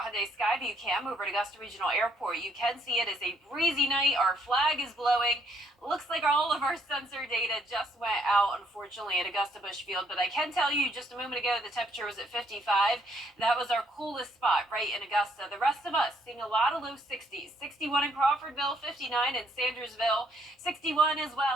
Skyview cam over at Augusta Regional Airport, you can see it is a breezy night. Our flag is blowing. Looks like all of our sensor data just went out, unfortunately, at Augusta Busch Field. But I can tell you just a moment ago, the temperature was at 55. That was our coolest spot right in Augusta. The rest of us seeing a lot of low 60s. 61 in Crawfordville, 59 in Sandersville, 61 as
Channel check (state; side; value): normal; both; correlation 0.69